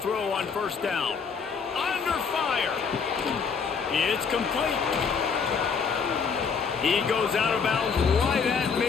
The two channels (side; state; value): right; quieter; 5.8 dB